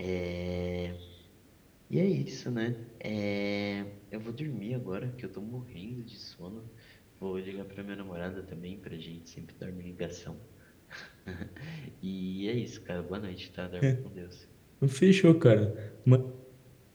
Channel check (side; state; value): both; identical; correlation 1.00